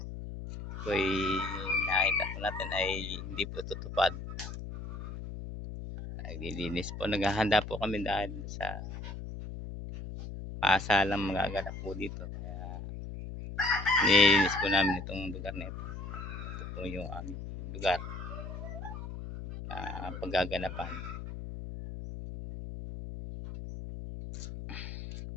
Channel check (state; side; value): noise; left; hum, 8 dB below the sound